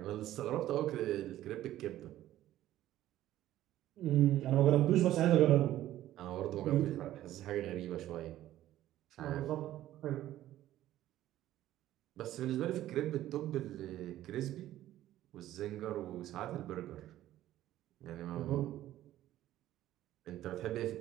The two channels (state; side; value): quieter; left; 13.7 dB